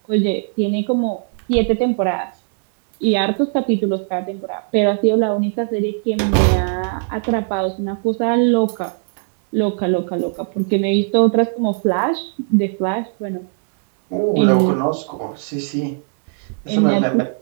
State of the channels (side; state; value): left; silent; 67 dB below the other